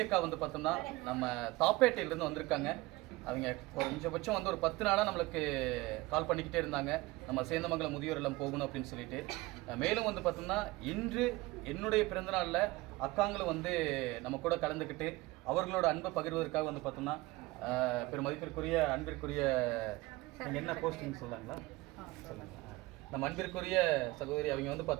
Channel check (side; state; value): left; quieter; 20.9 dB